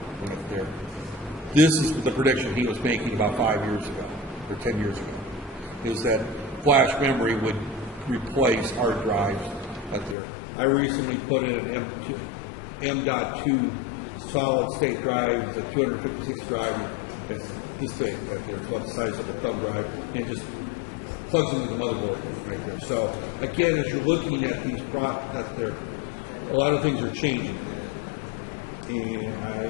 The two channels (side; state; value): right; drops out; at 10.2 s